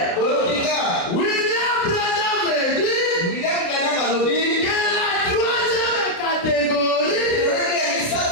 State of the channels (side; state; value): right; late; 29 ms